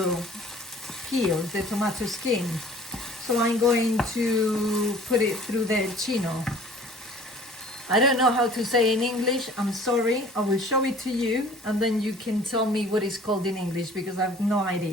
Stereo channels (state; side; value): normal; both; correlation 0.49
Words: peel, the tomato skin. So I'm going to put it through the chino. I don't know how to say in English, I'm sorry. I will show it to you and then you can tell me what it's called in English because I have no